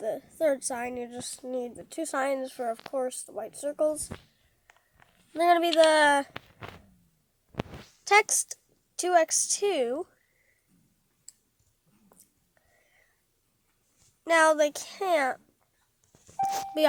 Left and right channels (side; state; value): both; identical; correlation 1.00